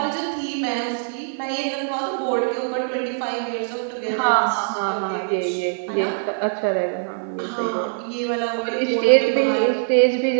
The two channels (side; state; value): left; silent; 59 dB below the other